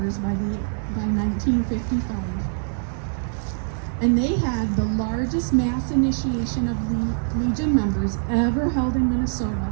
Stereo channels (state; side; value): silent; left; digital silence